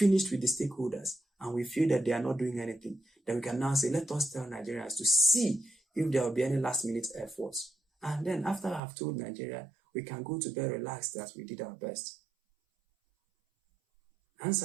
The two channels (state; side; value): drops out; left; at 8.8 s